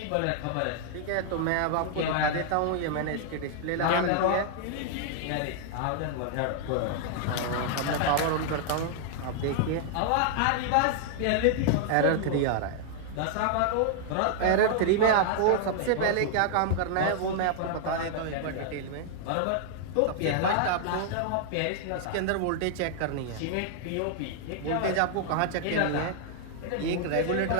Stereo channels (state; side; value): different; both; correlation 0.00